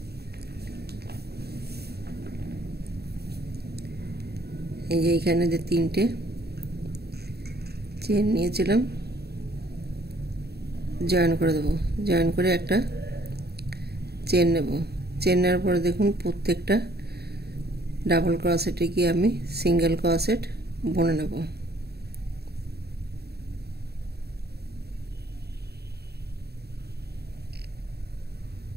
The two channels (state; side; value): late; left; 0.47 ms